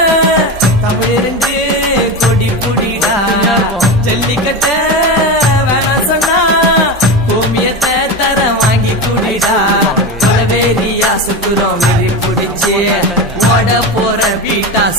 தமிழிருந்து கொடி புடிடா ஜல்லிக்கட்ட வேணாம் சொன்னா கோமியத்தை தர வாங்கி குடிடா கொலவேரியா சுத்துறோம் வெறி புடிச்சு ஓட போற வீட்டா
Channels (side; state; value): both; normal; correlation 0.20